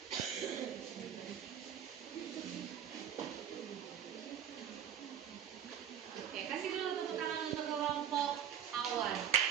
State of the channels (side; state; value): left; quieter; 9.1 dB